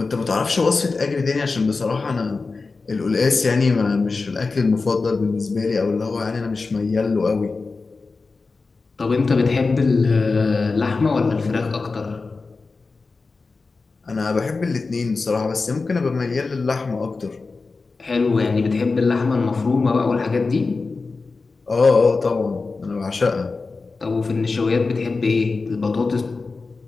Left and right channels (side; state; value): right; quieter; 4.1 dB